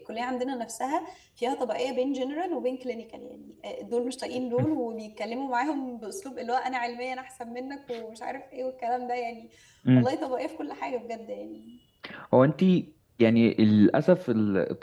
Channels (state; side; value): identical; both; correlation 1.00